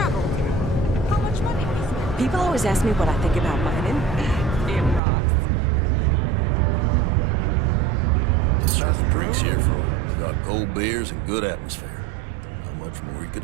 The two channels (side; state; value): left; drops out; at 5.0 s